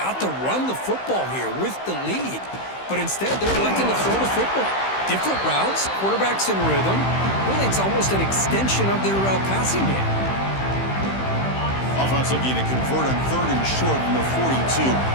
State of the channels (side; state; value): right; late; 15 ms